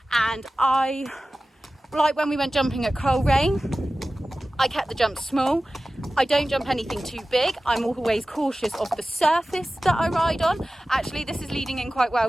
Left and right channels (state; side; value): normal; both; correlation 0.96